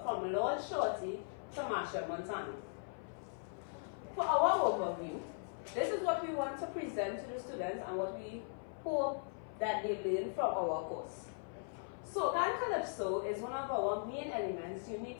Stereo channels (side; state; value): right; silent; 52 dB below the other